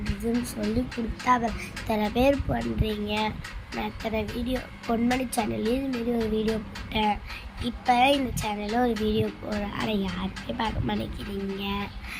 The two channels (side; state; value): both; identical; correlation 1.00